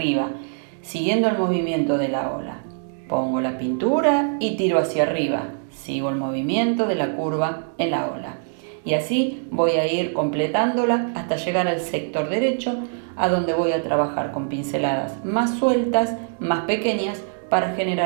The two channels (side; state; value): left; silent; 63 dB below the other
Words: siguiendo el movimiento de la ola. Pongo la pintura y tiro hacia arriba. Sigo el movimiento de la curva en la ola. Y así voy a ir completándola hasta llegar al sector derecho, a donde voy a trabajar con pinceladas más sueltas, más pequeñas, para